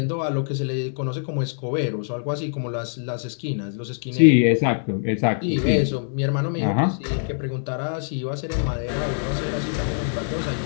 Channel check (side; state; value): right; silent; digital silence